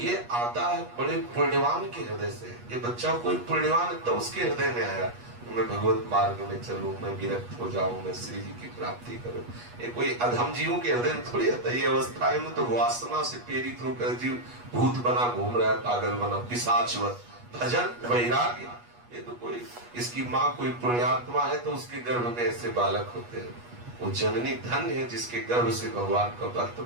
आता है बड़े पुण्यवान के हृदय से। ये बच्चा कोई पुण्यवान है तो उसके हृदय में आया, मैं भगवत मार्ग में चलूं, मैं विरक्त हो जाऊं, मैं श्री जी की प्राप्ति करूं। ये कोई अधम जीवों के हृदय में थोड़ी आता है। ये अवस्थाएं में तो वासना से प्रेरित होकर जीव भूत बना घूम रहा है, पागल बना, पिशाचवत। भजन वैराग्य, ये तो कोई, इसकी माँ कोई पुण्यात्मा है तो उसके गर्भ में ऐसे बालक होते हैं। वो जननी धन्य है जिसके गर्भ से भगवान का भक्त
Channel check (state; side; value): late; left; 8.3 ms